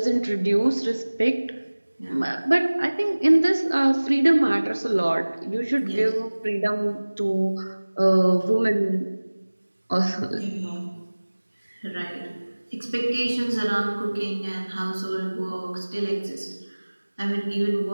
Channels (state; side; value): inverted; both; correlation -1.00